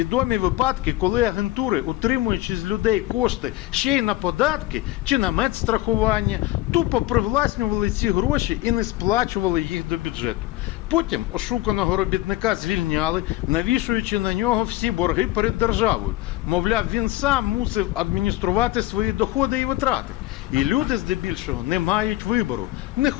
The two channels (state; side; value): quieter; right; 16.9 dB